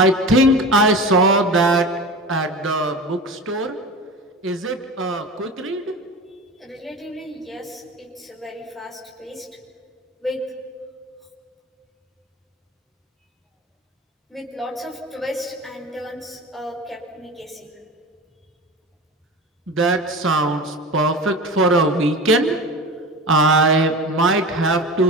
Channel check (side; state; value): both; normal; correlation 0.32